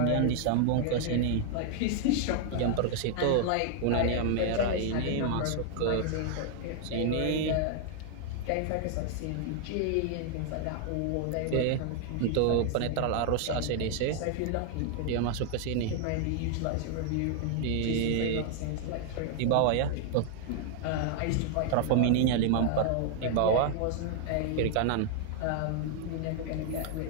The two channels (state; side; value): different; both; correlation 0.00